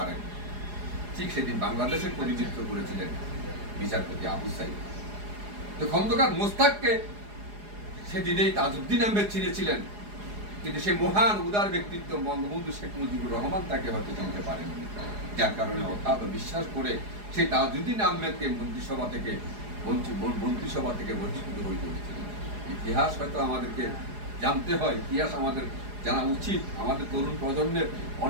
ঠিক সেদিন বাংলাদেশের প্রতিনিধিত্ব করেছিলেন বিচারপতি আবু সাইদ। তো খন্দকার মোস্তাককে সেদিনেই তাজউদ্দিন আহমেদ চিনেছিলেন কিন্তু সেই মহান উদার ব্যক্তিত্ব বঙ্গবন্ধু শেখ মুজিবুর রহমান তাকে হয়তো চিনতে পারেননি, যার কারণে অগাধ বিশ্বাস করে সেই তাজউদ্দিন আহমেদকে মন্ত্রিসভা থেকে বঞ্চিত হয়ে পড়েছিলেন। ইতিহাস হয়তো আমাদেরকে জানতে হয়, ইতিহাস আমাদের জানা উচিত। আমাদের তরুণ প্রজন্মের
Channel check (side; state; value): left; late; 4.8 ms